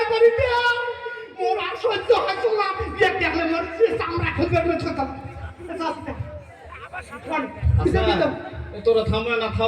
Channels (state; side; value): identical; both; correlation 1.00